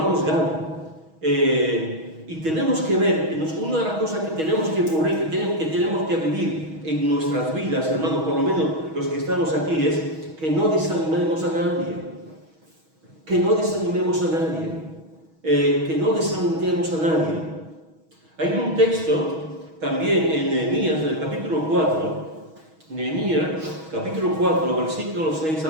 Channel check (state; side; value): late; left; 6.3 ms